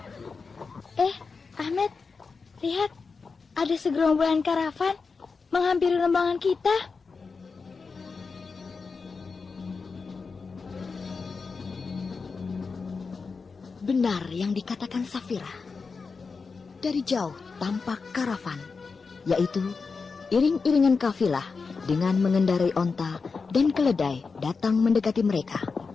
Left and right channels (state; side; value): quieter; right; 4.7 dB